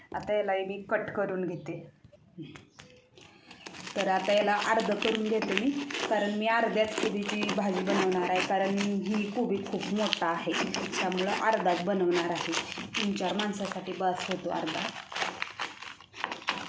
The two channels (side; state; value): both; identical; correlation 1.00